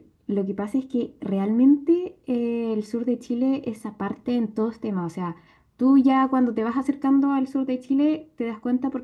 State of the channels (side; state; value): both; identical; correlation 1.00